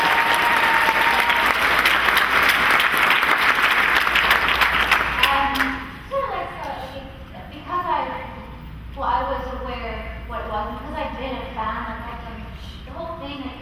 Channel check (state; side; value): identical; both; correlation 1.00